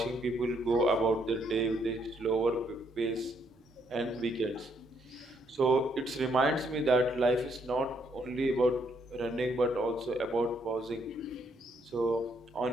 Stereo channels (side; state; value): both; normal; correlation 0.72